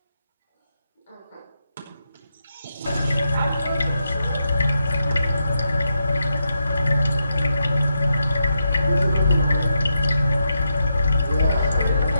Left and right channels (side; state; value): both; inverted; correlation -0.84